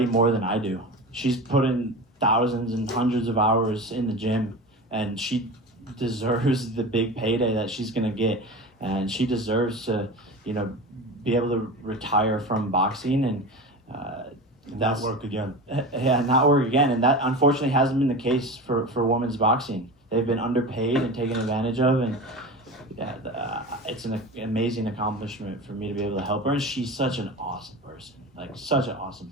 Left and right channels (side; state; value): both; normal; correlation 0.29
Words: more than I do. She's put in thousands and hundreds of hours in the gym, and she deserves the big payday that she's gonna get, and she deserves to, you know, be able to retire from boxing and not work again. Yeah, not work again, and that unfortunately hasn't been the case for women's boxing. They've been underpaid and taken advantage of, and it's an amazing accomplishment for me to be able to help her. And she's such an awesome person, like such an awesome